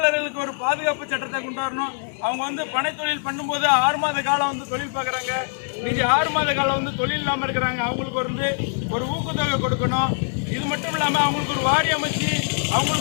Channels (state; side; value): silent; right; 63 dB below the other